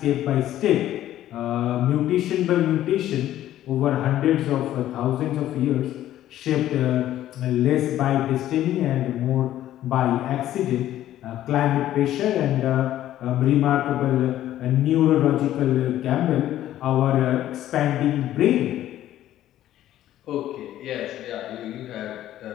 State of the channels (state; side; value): quieter; right; 12.9 dB